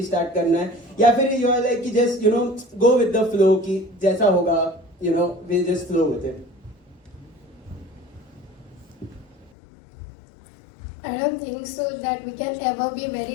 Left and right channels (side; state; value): right; drops out; at 9.5 s